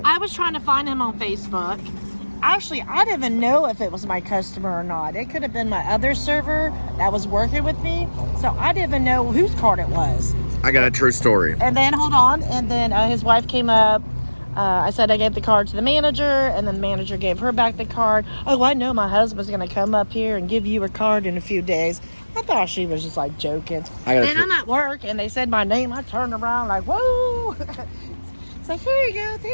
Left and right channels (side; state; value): both; inverted; correlation -1.00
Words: I was trying to find him on Facebook. Actually, I didn't even know if it was my customer or not. It could have been my other server that was working with me. So I didn't even know whose card it was. I got a true story. And then, hold on. And then his wife came up. I said I gave the card to the manager. And then the manager gave her back the card. Oh, I know my husband's going to come up here and give you a card in a few days. I thought she was just like joking. And I'm at work and they said my name. I turned around like, whoa. It's like, here you go.